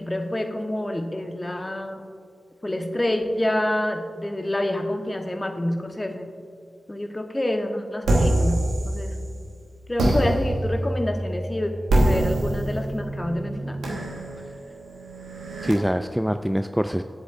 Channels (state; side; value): normal; both; correlation 0.95